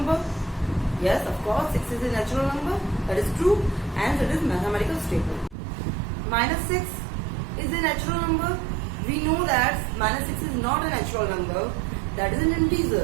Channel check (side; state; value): left; drops out; at 5.6 s